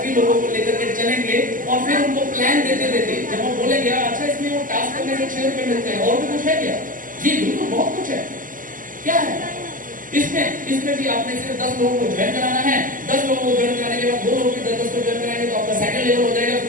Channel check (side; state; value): left; late; 0.39 ms